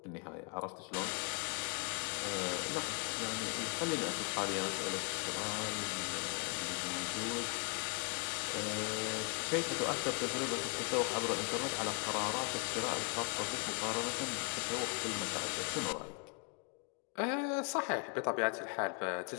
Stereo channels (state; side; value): quieter; right; 36.1 dB